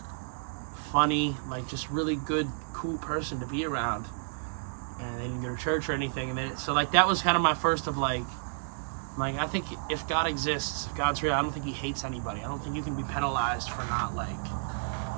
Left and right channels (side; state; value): left; silent; digital silence